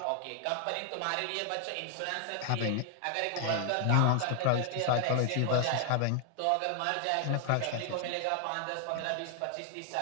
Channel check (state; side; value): different; both; correlation 0.00